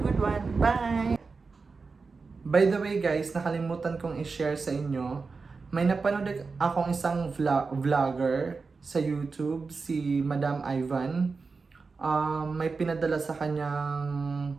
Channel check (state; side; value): quieter; left; 4.5 dB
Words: one. Bye! By the way guys, nakalimutan kong i-share sa inyo. May napanood akong isang vlogger sa YouTube, si Madam Ivan. May pinadala sa